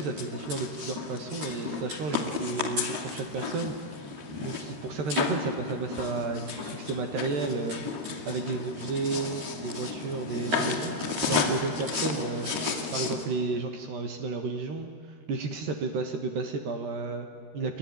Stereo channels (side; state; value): left; late; 13 ms